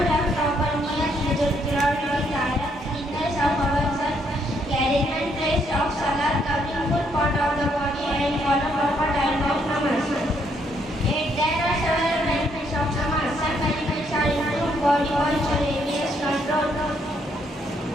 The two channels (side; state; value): both; normal; correlation 0.72